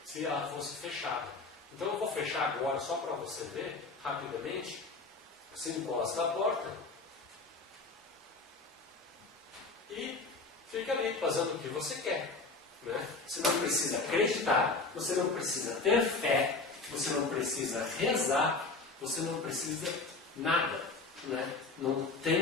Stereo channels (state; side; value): quieter; right; 3.7 dB